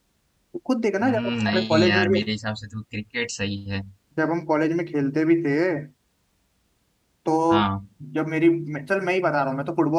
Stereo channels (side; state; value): both; identical; correlation 1.00